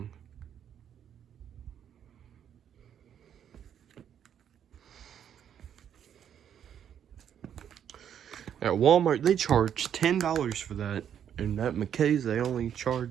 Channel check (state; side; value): quieter; left; 9.1 dB